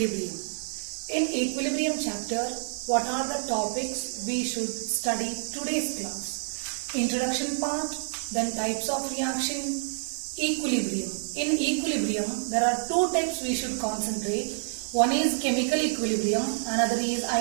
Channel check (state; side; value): silent; left; digital silence